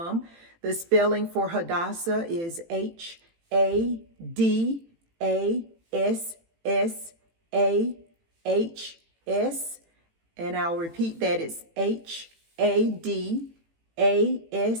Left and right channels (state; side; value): late; left; 18 ms